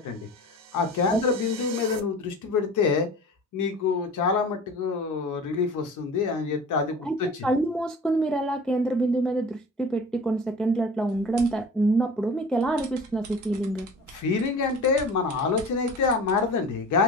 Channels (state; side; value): normal; both; correlation 0.39